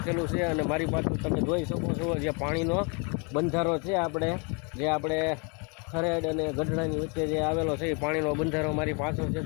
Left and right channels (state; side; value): quieter; right; 33.8 dB